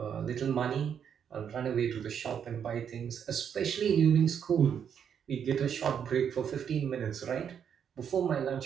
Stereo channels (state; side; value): quieter; left; 8.0 dB